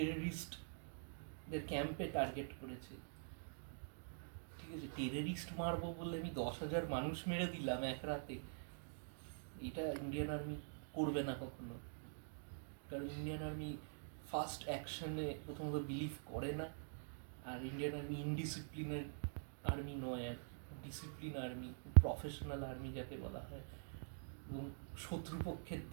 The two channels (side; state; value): left; silent; digital silence